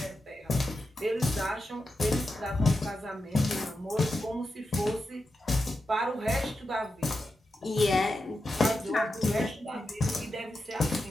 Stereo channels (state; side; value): normal; both; correlation 0.89